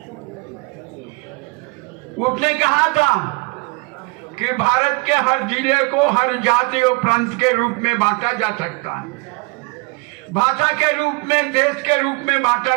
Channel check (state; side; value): quieter; left; 28.4 dB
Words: उसने कहा था कि भारत के हर जिले को हर जाति और प्रांत के रूप में बांटा जा सकता है, भाषा के रूप में, देश के रूप में बांटा